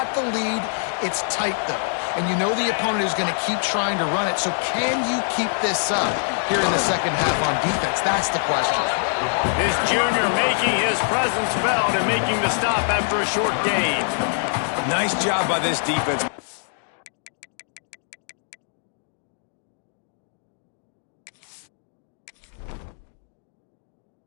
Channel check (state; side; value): silent; right; digital silence